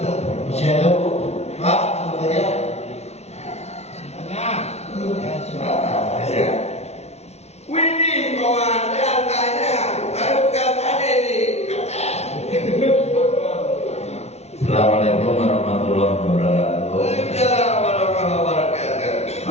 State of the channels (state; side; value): late; right; 0.31 ms